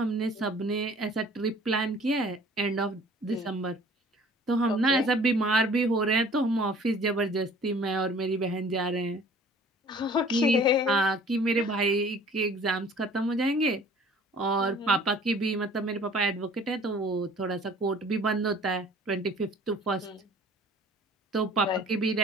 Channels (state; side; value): normal; both; correlation 0.50